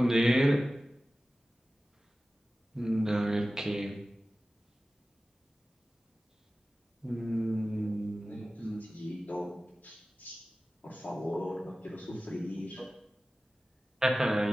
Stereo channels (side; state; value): both; normal; correlation 0.96